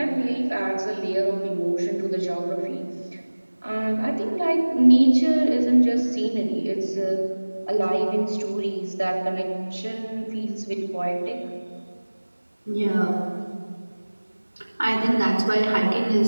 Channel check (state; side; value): inverted; both; correlation -1.00